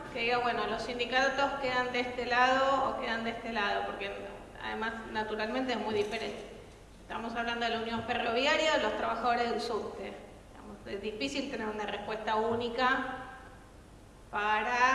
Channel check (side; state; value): both; identical; correlation 1.00